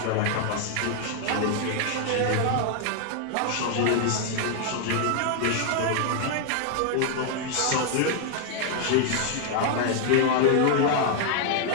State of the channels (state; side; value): different; both; correlation 0.00